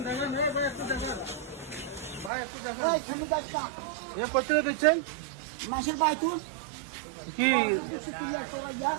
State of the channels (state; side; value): drops out; left; at 2.3 s